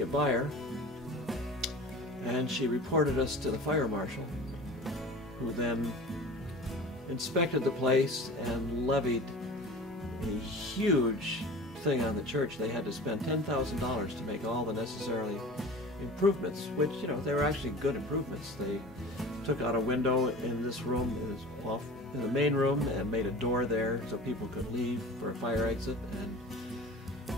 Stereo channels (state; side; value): normal; both; correlation 0.38